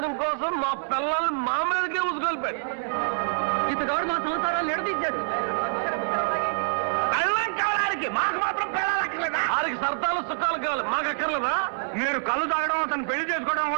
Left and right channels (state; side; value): silent; left; digital silence